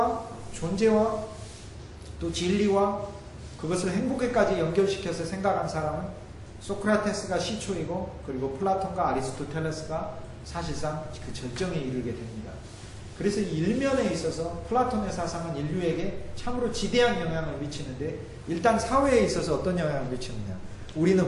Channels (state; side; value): identical; both; correlation 1.00